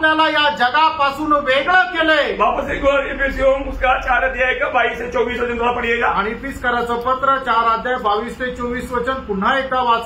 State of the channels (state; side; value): identical; both; correlation 1.00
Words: या जगापासून वेगळं केलंय। वापस एक और एफेसियों उसका 4 अध्याय का 22 से 24 वचन थोड़ा पढ़िएगा। आणि इफिसकराचं पत्र 4 अध्याय 22 ते 24 वचन पुन्हा एकदा